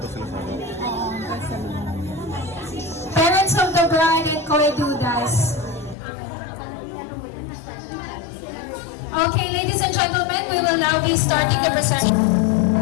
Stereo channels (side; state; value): right; drops out; at 6.0 s